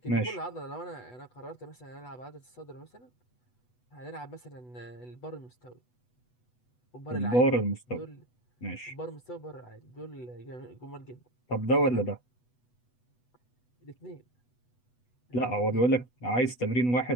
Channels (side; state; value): right; late; 8.1 ms